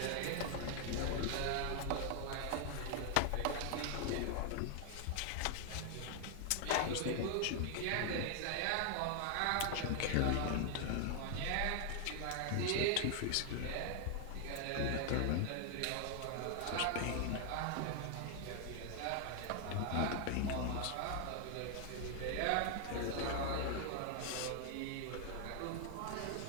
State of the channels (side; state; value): both; different; correlation 0.00